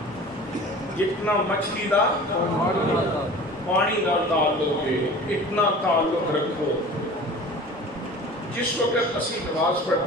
جتنا مچھلی دا پانی نال تعلق ہے، اتنا تعلق رکھو۔ جس وقت اسی نماز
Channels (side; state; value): both; normal; correlation 0.40